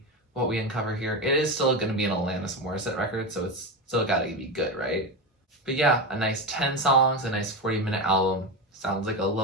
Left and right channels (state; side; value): normal; both; correlation 0.17